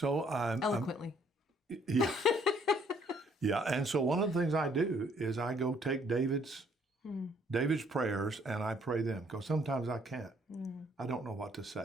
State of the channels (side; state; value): both; normal; correlation 0.64